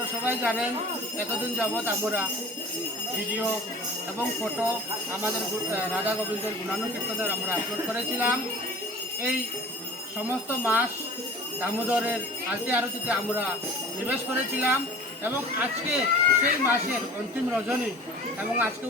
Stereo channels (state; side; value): normal; both; correlation 0.43